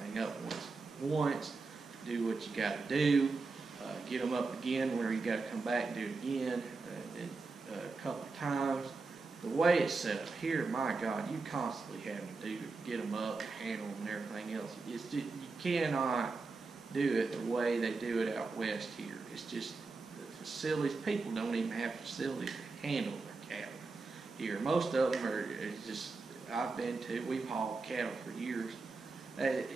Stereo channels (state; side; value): quieter; left; 4.0 dB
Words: up once. Do what you got to do. Get them up again where you got to come back and do it again a couple of times. The way it's set up here, my God, you constantly having to get them up, handle them, and everything else. You cannot do it the way they do it out west here. It's just the facilities. People don't even have facilities to handle their cattle here. Most of them are just. We've hauled cattle for years.